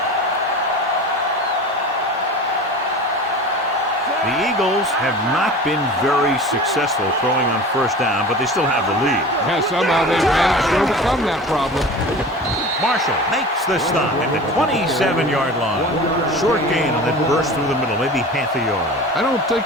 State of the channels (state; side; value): normal; both; correlation 0.36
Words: The Eagles have not been very successful throwing on 1st down, but they still have the lead. Yeah, somehow they've managed to overcome that problem. Marshall makes the stop at the 27-yard line. Short gain on that burst through the middle, maybe half a yard. I don't